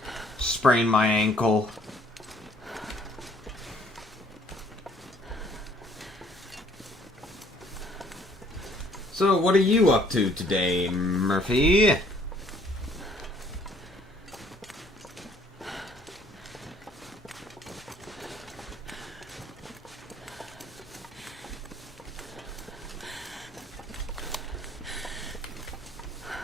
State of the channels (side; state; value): both; normal; correlation 0.60